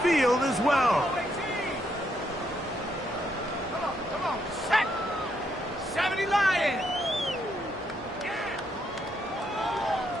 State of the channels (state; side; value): normal; both; correlation 0.76